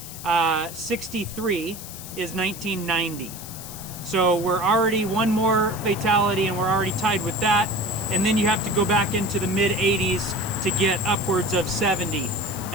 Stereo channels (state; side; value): noise; left; hiss, 12 dB below the sound